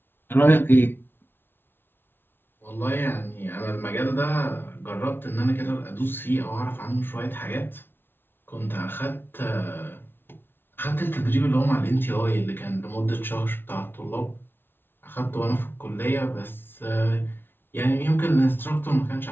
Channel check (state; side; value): late; right; 0.10 ms